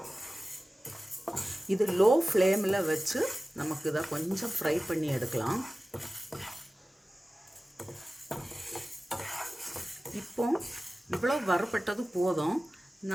இது லோ ஃப்ளேமில் வச்சு நமக்கு இதை கொஞ்சம் ஃப்ரை பண்ணி எடுக்கலாம். இப்போ இவ்வளோ வறுபட்டது போதும்.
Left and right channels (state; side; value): normal; both; correlation 0.96